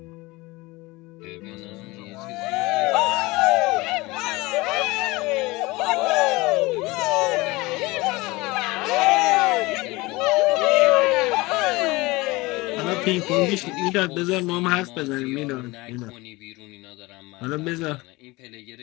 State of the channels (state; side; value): quieter; right; 22.2 dB